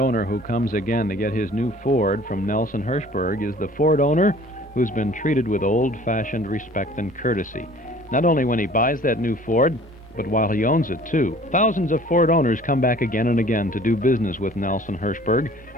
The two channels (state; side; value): normal; both; correlation 0.50